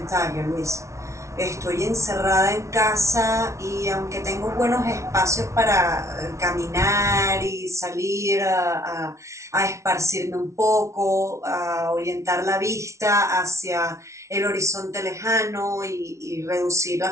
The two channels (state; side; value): late; left; 0.14 ms